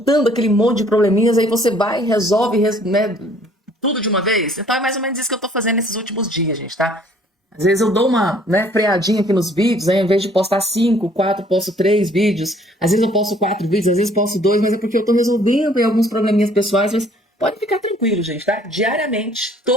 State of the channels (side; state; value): both; normal; correlation 0.59